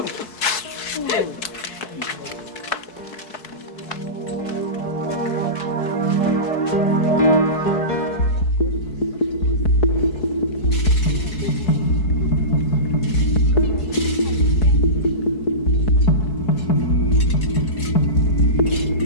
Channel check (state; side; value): late; right; 4.6 ms